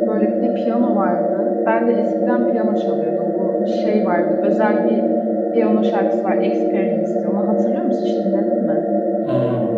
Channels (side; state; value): both; identical; correlation 1.00